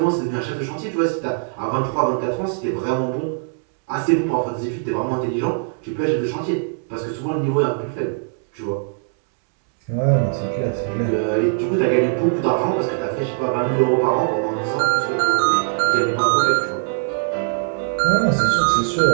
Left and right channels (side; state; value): left; silent; digital silence